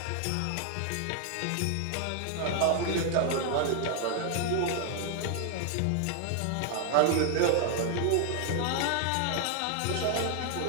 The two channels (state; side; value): different; both; correlation 0.00